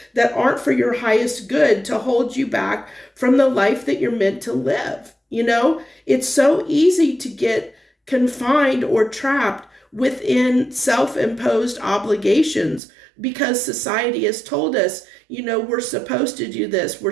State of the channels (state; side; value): drops out; left; at 12.8 s